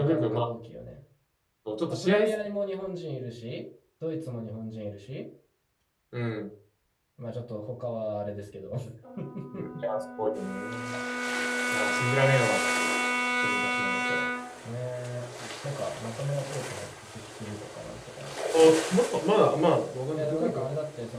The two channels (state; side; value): identical; both; correlation 1.00